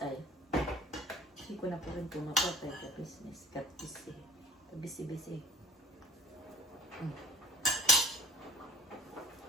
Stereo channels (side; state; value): both; normal; correlation 0.45